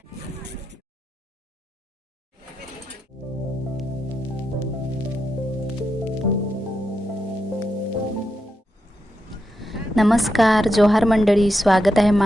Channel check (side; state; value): both; normal; correlation 0.85